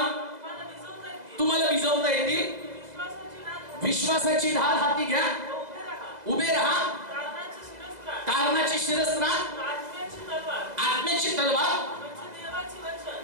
तुम्हाला विझवता येतील. विश्वासाची ढाल हाती घ्या, उभे राहा. तारणाची शिरस्त्राण, आत्म्याची तलवार,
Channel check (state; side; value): late; left; 2.0 ms